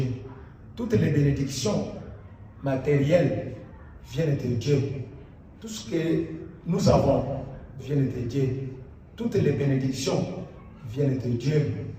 Toutes les bénédictions matériels viennent de Dieu. Tout ce que nous avons vient de Dieu. Toutes les bénédictions viennent de Dieu.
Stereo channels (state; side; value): identical; both; correlation 1.00